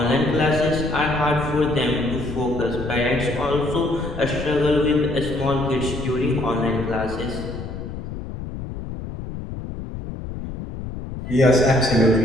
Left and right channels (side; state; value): left; noise; rumble, 8 dB below the sound